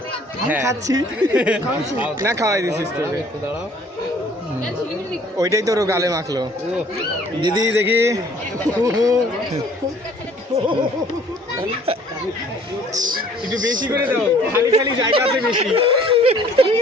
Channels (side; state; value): both; normal; correlation 0.56